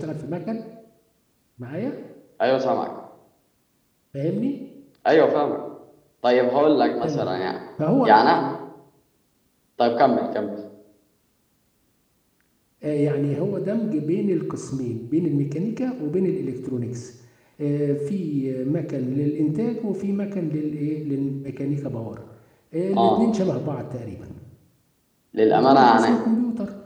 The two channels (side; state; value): both; identical; correlation 1.00